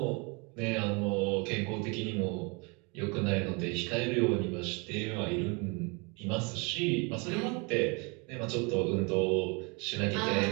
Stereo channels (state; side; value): quieter; left; 30.9 dB